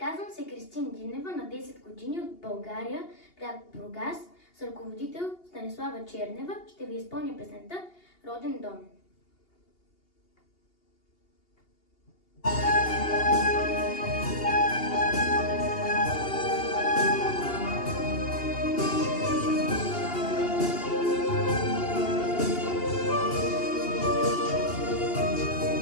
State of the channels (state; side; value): late; right; 2.8 ms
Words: се Кристин Динева, на 10 години, от България, град Бургас. С ръководител Станислава Чернева ще ви изпълня песента "Роден дом".